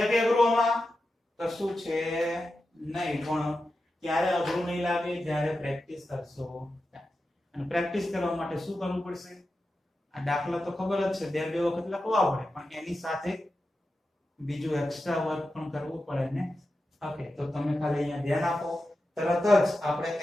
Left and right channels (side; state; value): both; normal; correlation 0.91